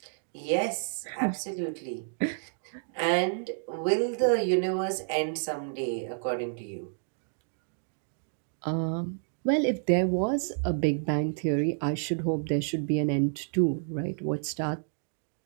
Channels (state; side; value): silent; left; digital silence